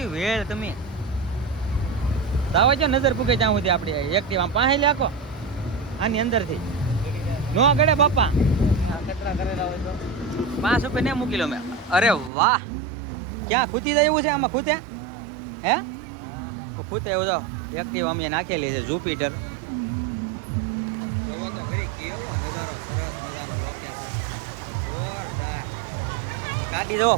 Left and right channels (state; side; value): drops out; left; at 12.3 s